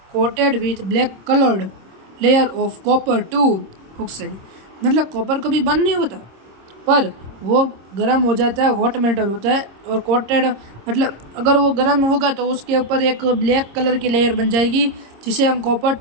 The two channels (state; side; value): late; left; 26 ms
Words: coated with black coloured layer of copper two oxide. मतलब कॉपर कभी बर्न नहीं होता पर वो गर्म हो जाता है, हॉट मेटल होता है और कोटेड, मतलब अगर वो गर्म होगा तो उसके ऊपर एक ब्लैक कलर की लेयर बन जाएगी जिसे हम कॉपर